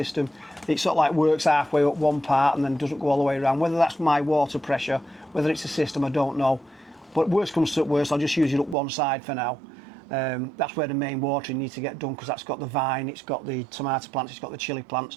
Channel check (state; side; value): drops out; left; at 8.8 s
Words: It sort of like works halfway up one part and then doesn't go all the way around. Whether that's my water pressure, whether it's a system, I don't know. But worst comes to worst, I'll just use it up one side for now. That's where the main watering needs to get done, because that's got the vine, it's got the tomato plants, it's got the chilli